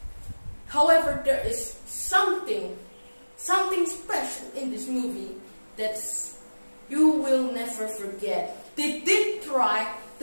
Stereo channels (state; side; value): inverted; both; correlation -1.00